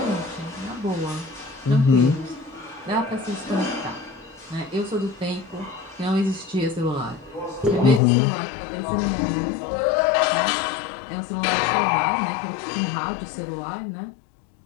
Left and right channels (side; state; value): right; drops out; at 8.0 s